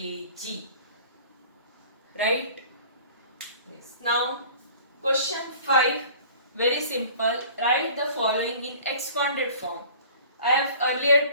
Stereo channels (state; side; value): inverted; both; correlation -0.46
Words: Right? Yes. Now, question 5. Very simple. Write the following in expanded form. I have earlier